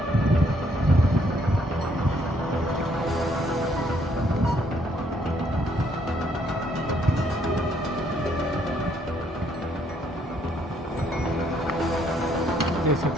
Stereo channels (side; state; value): both; normal; correlation 0.68